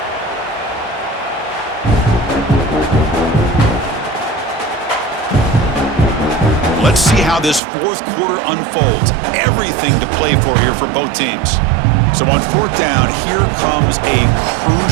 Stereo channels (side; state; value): left; drops out; at 7.6 s